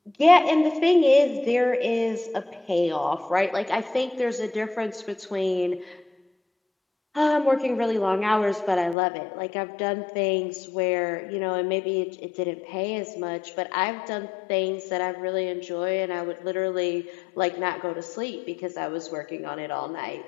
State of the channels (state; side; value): drops out; right; at 9.0 s